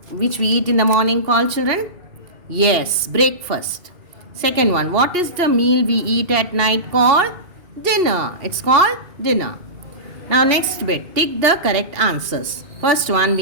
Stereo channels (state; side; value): late; left; 2.8 ms